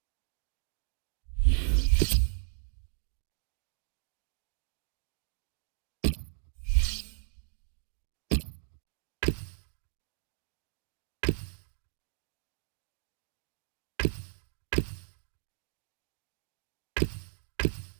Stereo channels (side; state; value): left; silent; digital silence